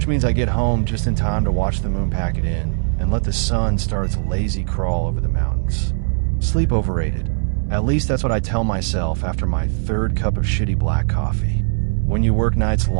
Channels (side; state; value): left; silent; digital silence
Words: means I get home just in time to watch the moon pack it in and let the sun start its lazy crawl over the mountains. Sleep overrated. At least that's what I tell myself after my third cup of shitty black coffee. When you work nights